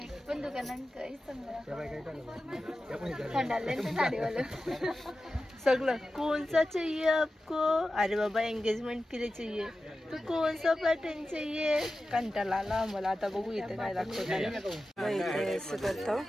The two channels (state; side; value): normal; both; correlation 0.93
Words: पण दुकानांकडे सगळं कौन सा चाहिए आपको? अरे बाबा एंगेजमेंट के लिए चाहिए तो कौन सा पैटर्न चाहिए? कंटाळा आला मला. आता बघू इथे काय दाखवतो. करतो